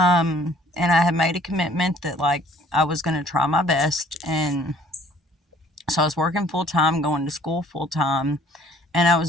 I had made a commitment that like I was going to try my best. And so I was working full time, going to school full time, and I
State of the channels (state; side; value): normal; both; correlation 0.56